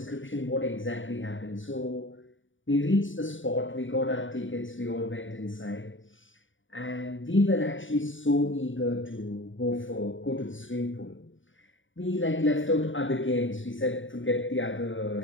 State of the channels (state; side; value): late; right; 0.56 ms